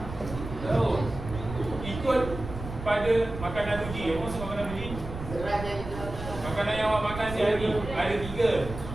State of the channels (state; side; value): noise; right; rumble, 9 dB below the sound